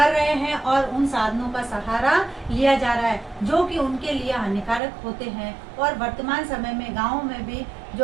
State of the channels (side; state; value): left; drops out; at 4.8 s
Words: रहे हैं और उन साधनों का सहारा लिया जा रहा है जो कि उनके लिए हानिकारक होते हैं। और वर्तमान समय में गाँव में भी